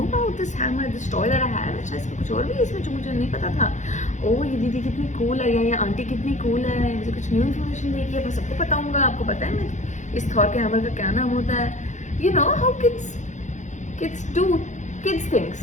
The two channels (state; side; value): late; right; 0.35 ms